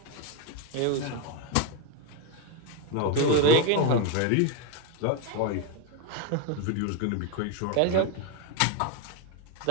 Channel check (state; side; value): different; both; correlation 0.02